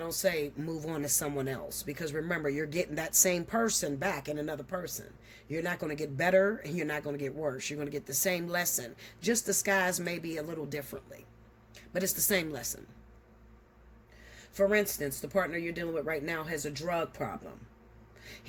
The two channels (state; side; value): identical; both; correlation 1.00